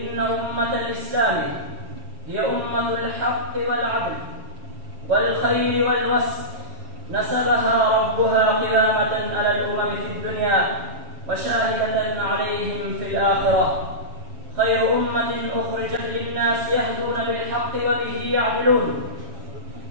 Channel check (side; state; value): left; late; 7.2 ms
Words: أمة الإسلام هي أمة الحق والعدل والخير والوسط. نسبها ربها قيامة على الأمم في الدنيا وشاهدة عليهم في الآخرة. خير أمة أخرجت للناس يهدون بالحق وبه يعدلون.